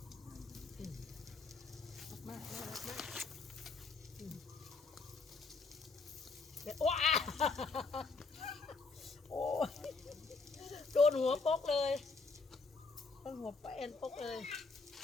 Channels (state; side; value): quieter; right; 4.1 dB